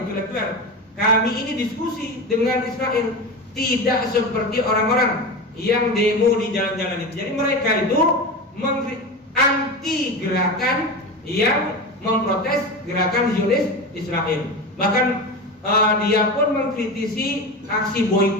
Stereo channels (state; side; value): normal; both; correlation 0.25